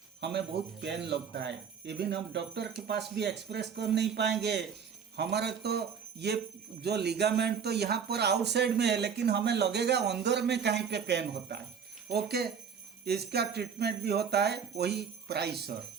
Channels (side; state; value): left; quieter; 7.0 dB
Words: हमें बहुत पेन लगता है, इवन हम डॉक्टर के पास भी एक्सप्रेस कर नहीं पाएंगे। हमारा तो ये जो लिगामेंट तो यहाँ पर आउटसाइड में है, लेकिन हमें लगेगा अंदर में कहीं पे पेन होता है। ओके, इसका ट्रीटमेंट भी होता है वही PRICER.